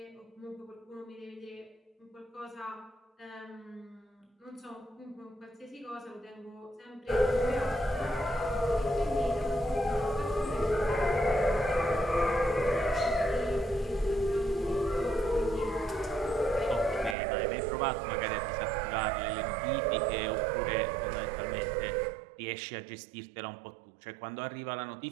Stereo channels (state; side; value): drops out; left; at 17.2 s